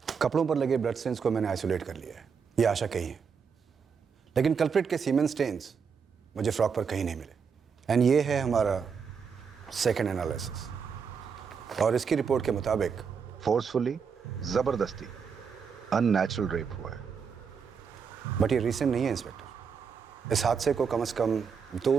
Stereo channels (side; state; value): left; quieter; 6.2 dB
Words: कपड़ों पर लगे ब्लड स्टेन्स को मैंने आइसोलेट कर लिया है, ये आशा कही है, लेकिन कल्प्रिट के सीमेन स्टेन्स मुझे फ्रॉक पर कहीं नहीं मिले। एंड ये है हमारा सेकंड एनालिसिस, और इसकी रिपोर्ट के मुताबिक फोर्सफुली, जबरदस्ती, अननेचुरल रेप हुआ है। बट ये रीसेंट नहीं है इंस्पेक्टर, इस हादसे को कम से कम